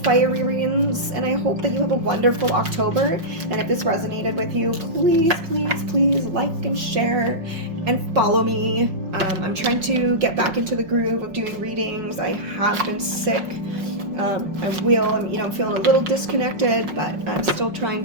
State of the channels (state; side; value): late; left; 5.5 ms